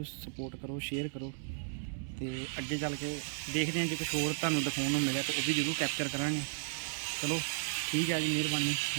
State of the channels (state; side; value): silent; left; digital silence